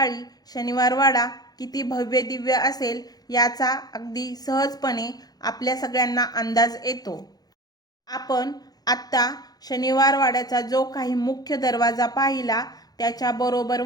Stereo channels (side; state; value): right; late; 0.19 ms